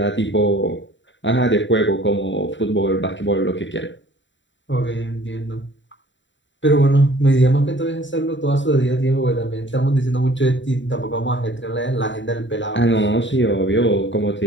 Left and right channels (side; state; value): right; late; 0.54 ms